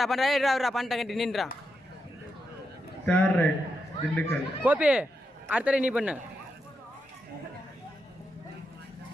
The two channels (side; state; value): both; normal; correlation 0.85